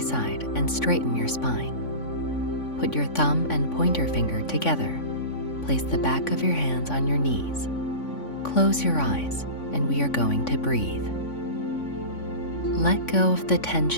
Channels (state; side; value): late; right; 3.5 ms